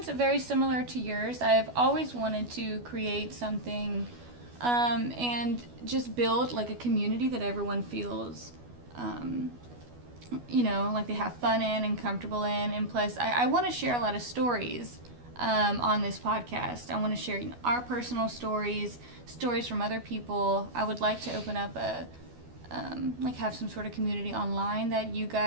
very similar to yours. I've always wanted to create something and just build like a community that everyone feels like they have fun in and comfortable in. And plus, I want to share a lot of stories on this podcast. I want to share our personal stories from other people. I would like to open up have some sort of community online that you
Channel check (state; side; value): late; left; 12 ms